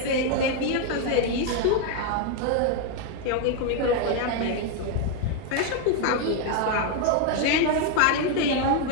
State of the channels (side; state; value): both; different; correlation 0.01